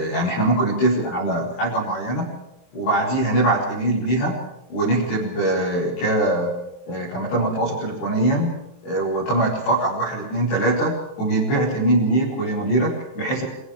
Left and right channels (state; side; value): late; right; 23 ms